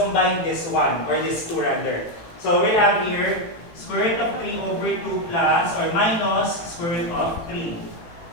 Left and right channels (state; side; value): late; right; 18 ms